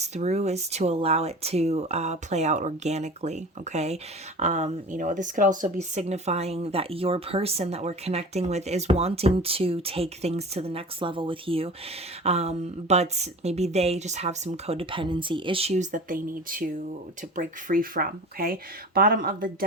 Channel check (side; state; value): both; normal; correlation 0.36